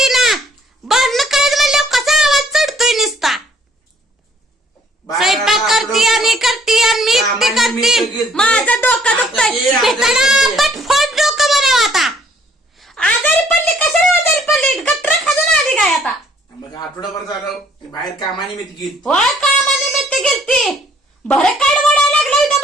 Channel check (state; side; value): normal; both; correlation 0.61